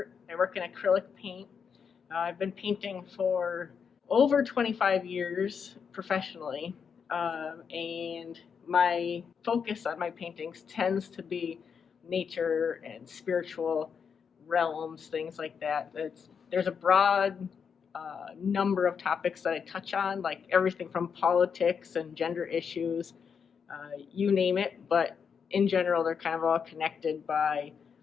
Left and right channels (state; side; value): quieter; right; 6.6 dB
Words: I work in acrylic paint. I've been painting for over 25 years professionally, and my focus on my paintings tends to be nature and spiritual realms, things like that. There's a broad number of topics that I touch on, like everything from politics and gender issues, you name it, but in general, they're kind of all connected by